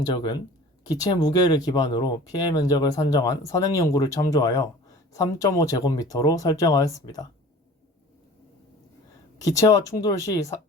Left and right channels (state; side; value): normal; both; correlation 0.43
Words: 기체 무게를 기반으로 피해 면적을 산정한 선행 연구를 참조하여 3.5제곱미터로 설정하였습니다. 기체와 충돌 시